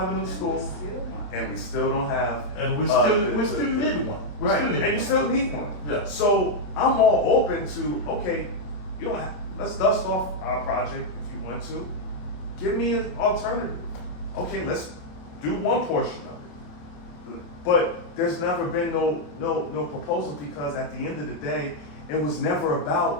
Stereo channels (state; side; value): late; right; 27 ms